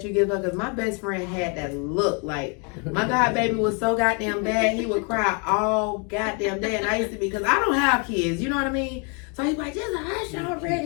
you give her? Because my best friend had that look. Like, my god baby was so goddamn bad, he would cry all goddamn day. And I used to be, because I don't have kids, you know what I mean? So he's like, just hush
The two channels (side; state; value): right; quieter; 35.8 dB